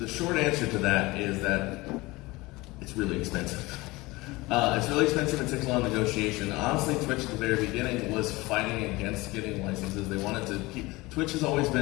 short answer to that is that it's really expensive. It's really expensive and takes a lot of negotiation. Honestly, Twitch at the very beginning was fighting against getting licenses. They wanted to keep. Twitch has always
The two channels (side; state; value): right; quieter; 21.6 dB